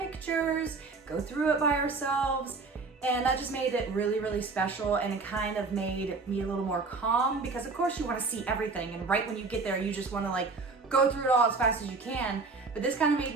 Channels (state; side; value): quieter; left; 4.2 dB